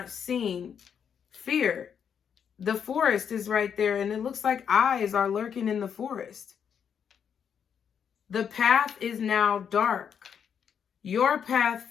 seen, fear. The forest is right there, and it looks like eyes are lurking in the forest. The path is now dark. Your path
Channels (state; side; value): quieter; right; 7.7 dB